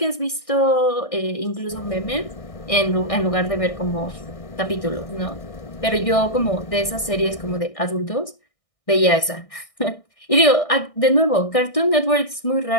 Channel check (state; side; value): late; right; 1.6 ms